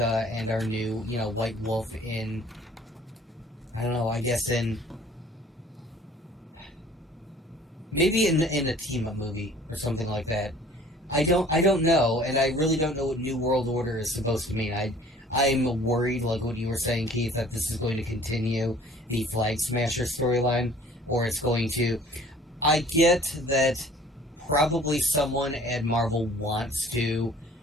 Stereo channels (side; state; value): both; normal; correlation 0.51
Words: and our new, White Wolf in, I don't know, I guess maybe in a team-up movie or something like that. I don't know, and I really don't know what New World Order is supposed to mean. I'm worried, like what you were saying, Keith, that this is going to continue the Flag Smasher storyline, or it's going to... I get that probably someone at Marvel wants to